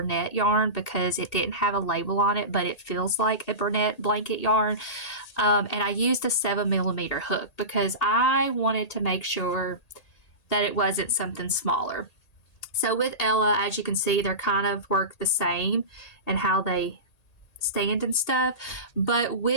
yarn because it didn't have a label on it, but it feels like a Burnett blanket yarn. And I used a 7mm hook because I wanted to make sure that it wasn't something smaller. So with Ella, as you can see, they're kind of work the same and how they stand and stuff. But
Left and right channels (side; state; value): right; late; 1.8 ms